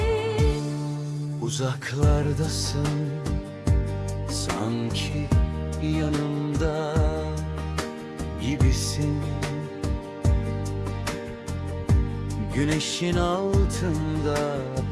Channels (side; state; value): both; identical; correlation 1.00